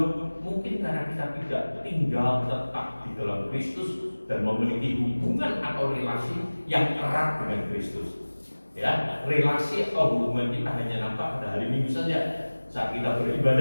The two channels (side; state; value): both; inverted; correlation -1.00